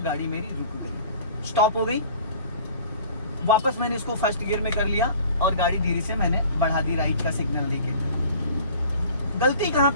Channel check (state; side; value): inverted; both; correlation -0.47